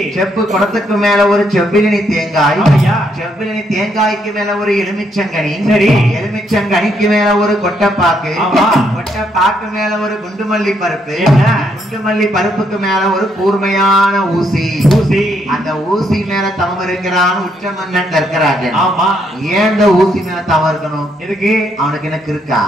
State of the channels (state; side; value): normal; both; correlation 0.74